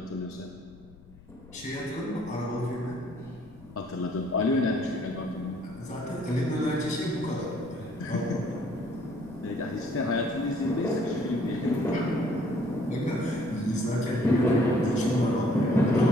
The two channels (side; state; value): left; noise; rumble, 22 dB below the sound